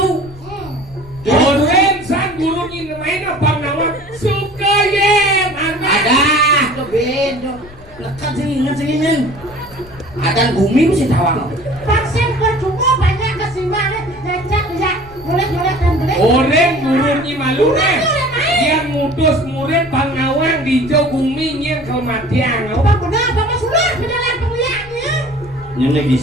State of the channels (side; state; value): left; noise; rumble, 20 dB below the sound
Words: Orang sang gurun ni main apa nama? Sukayem. Ada keben, lekat sini men. Ada bumi mesti tawang. Vaksin percuma banyak kesimbangan, lecak ya, boleh dan boleh. Orang gurun ni malu ni. Yang mutus murid pangawang di jauh bumi yang kematian. Bang benar, Bapak sudah berjalan pemilihannya. Yang